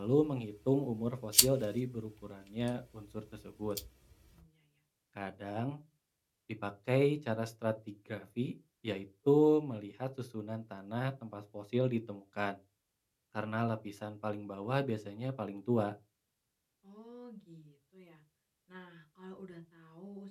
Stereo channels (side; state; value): both; identical; correlation 1.00